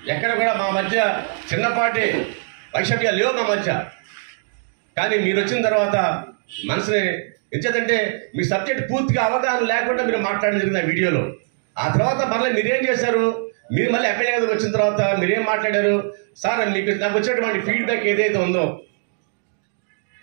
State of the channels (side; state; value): left; silent; digital silence